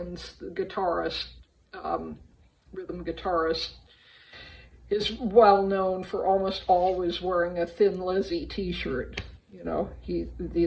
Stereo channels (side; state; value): both; identical; correlation 1.00